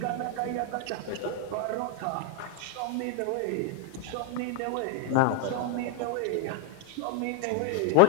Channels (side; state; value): both; different; correlation 0.00